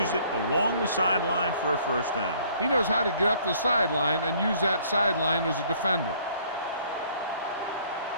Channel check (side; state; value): both; inverted; correlation -0.59